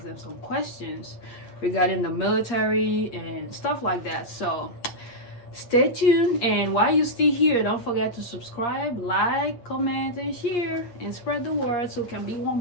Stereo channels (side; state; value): right; late; 8.5 ms